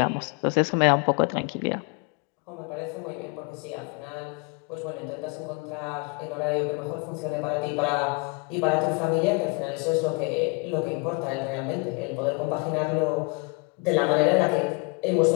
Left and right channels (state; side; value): quieter; right; 30.2 dB